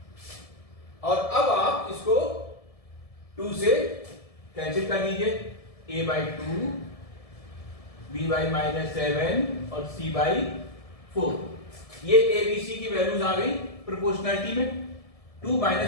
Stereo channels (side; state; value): right; late; 1.7 ms